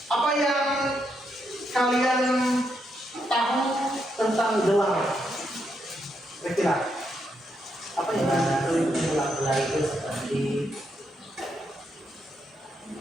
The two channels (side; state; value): both; normal; correlation 0.80